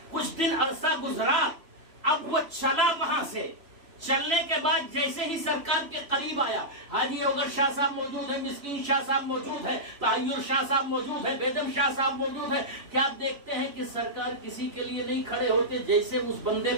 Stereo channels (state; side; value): late; left; 3.0 ms